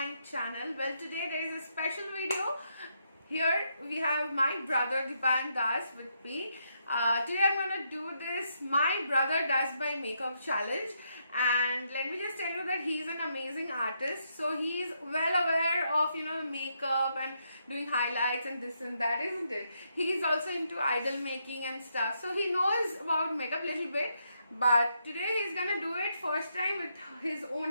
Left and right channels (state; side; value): inverted; both; correlation -0.78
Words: channel. Well, today there is a special video. Here we have my brother Dipan Das with me. Today I'm going to do this My Brother Does My Makeup challenge, and let me just tell you that he's an amazing artist. So he's well aware of makeup and doing highlights and this and that, isn't it? He's also into idol making and stuff, so he knows about makeup a little bit. But today he's gonna do it first time with his